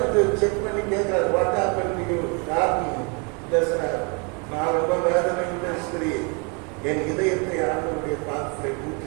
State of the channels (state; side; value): quieter; left; 33.9 dB